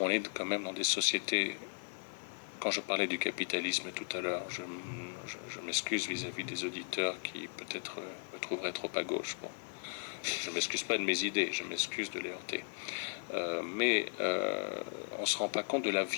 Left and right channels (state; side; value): silent; right; 53 dB below the other